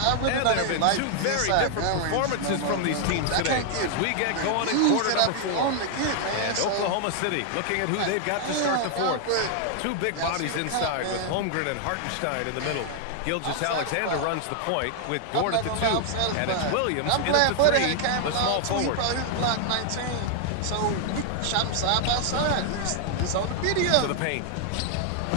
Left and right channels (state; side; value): different; both; correlation 0.00